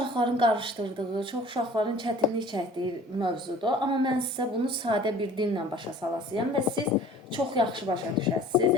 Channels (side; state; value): both; normal; correlation 0.48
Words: qarışdırdığı, çox uşaqların çətinlik çəkdiyi mövzudur. Amma mən sizə bunu sadə bir dillə başa salasıyam və siz çox yaxşı başa düşəsiniz.